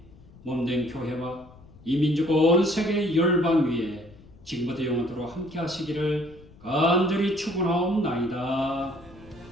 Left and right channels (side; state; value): left; noise; rumble, 23 dB below the sound